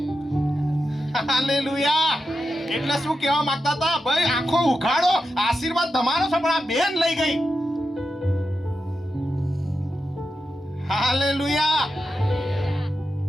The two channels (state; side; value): normal; both; correlation 0.89